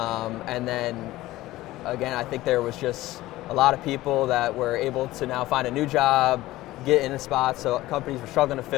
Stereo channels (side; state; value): right; quieter; 16.9 dB